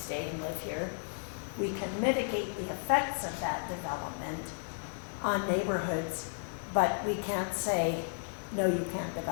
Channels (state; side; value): silent; right; 55 dB below the other